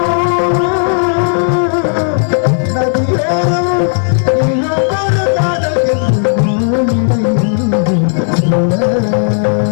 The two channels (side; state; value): right; silent; digital silence